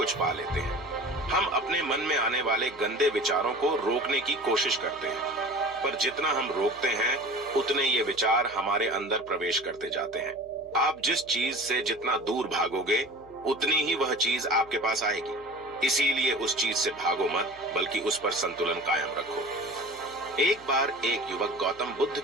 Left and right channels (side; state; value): left; noise; hum, 25 dB below the sound